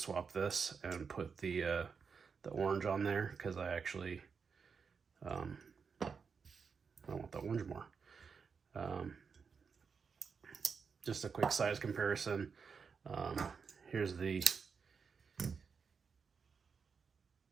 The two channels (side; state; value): left; quieter; 5.7 dB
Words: swap this and put the orange on there, because I actually I want the orange more. Just a quick size comparison. Here's the